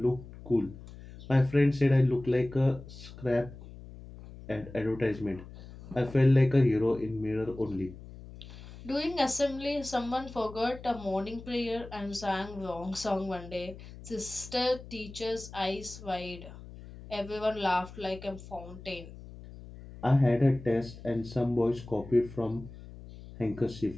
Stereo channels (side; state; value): left; noise; hum, 16 dB below the sound